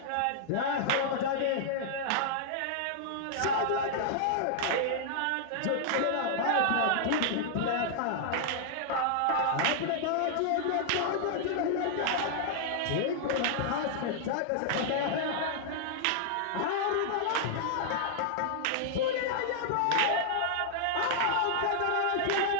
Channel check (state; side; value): different; both; correlation -0.01